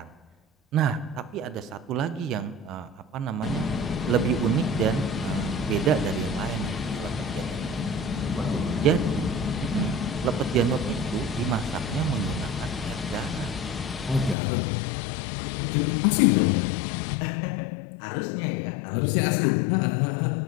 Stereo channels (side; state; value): right; drops out; at 14.4 s